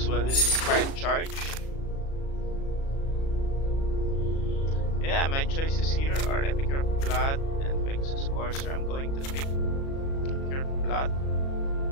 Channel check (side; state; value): right; late; 37 ms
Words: well with Inspired Charge. Yeah, my choices here are Epicure of Blood and Pegasus Courser. I'm going to pick Epicure of Blood.